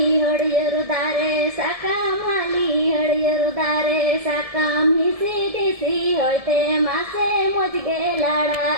ಹೊಡೆಯರು ದಾರೆ সাকামালি হড়িয়ರು ದಾರೆ সাকাম হিসি দিসি হইতে মাসে মজগে লাড়া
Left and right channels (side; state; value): left; late; 1.7 ms